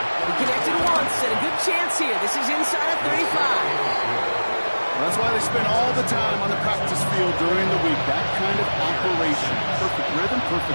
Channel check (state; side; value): inverted; both; correlation -1.00